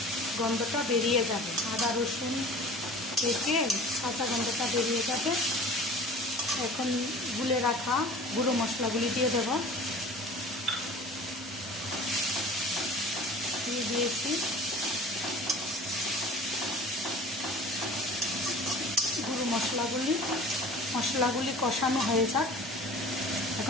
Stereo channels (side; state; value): both; normal; correlation 0.42